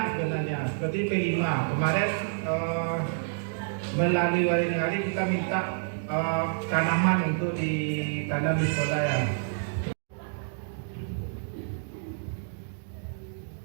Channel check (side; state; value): left; silent; digital silence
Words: sebenarnya. Seperti P5 kemarin melalui wali negara kita minta tanaman untuk ditanam di sekolah ya.